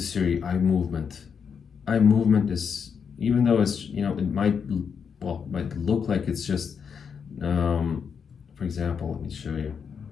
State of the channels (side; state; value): right; quieter; 6.6 dB